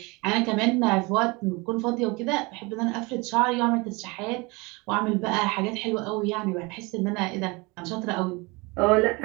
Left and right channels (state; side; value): quieter; left; 26.0 dB